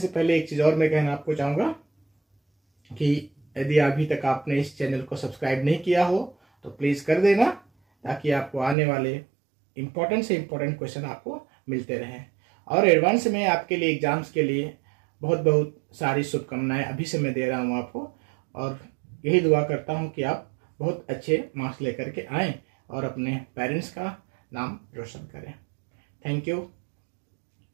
पहले एक चीज और मैं कहना आपको चाहूंगा कि यदि अभी तक आपने इस चैनल को सब्सक्राइब नहीं किया हो तो प्लीज कर देना, ताकि आपको आने वाले इंपॉर्टेंट से इंपॉर्टेंट क्वेश्चन आपको मिलते रहें। और एडवांस में आपके लिए एग्जाम्स के लिए बहुत सारी शुभकामनाएं अभी से मैं दे रहा हूं आपको, और यही दुआ करता हूं कि आप बहुत अच्छे मार्क्स लेकर के आएं और अपने पेरेंट्स का नाम रोशन करें। Thank you.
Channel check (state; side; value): drops out; left; at 8.8 s